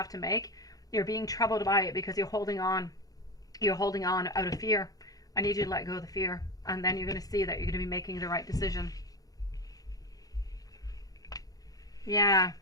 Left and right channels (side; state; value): right; late; 0.18 ms